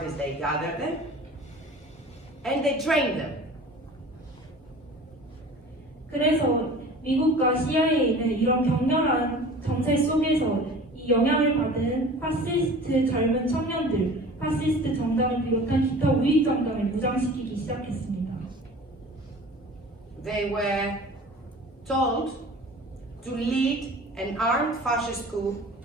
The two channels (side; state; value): both; normal; correlation 0.41